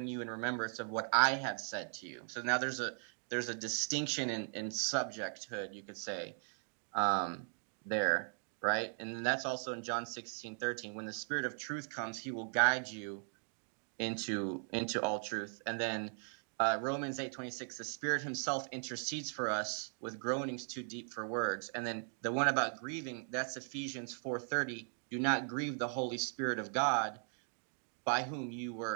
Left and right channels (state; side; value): silent; left; 52 dB below the other